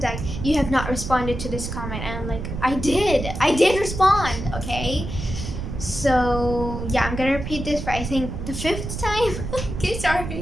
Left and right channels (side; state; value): right; noise; rumble, 6 dB below the sound